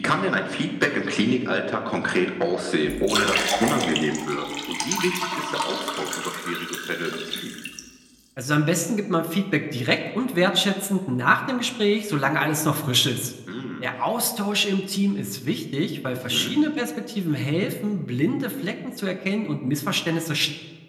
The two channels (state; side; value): identical; both; correlation 1.00